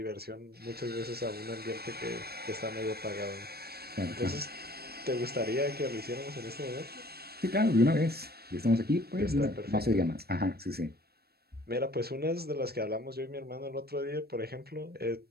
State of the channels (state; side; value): late; left; 0.46 ms